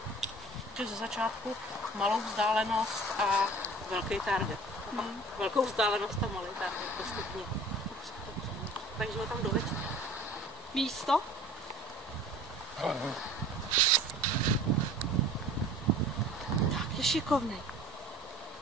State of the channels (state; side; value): normal; both; correlation 0.44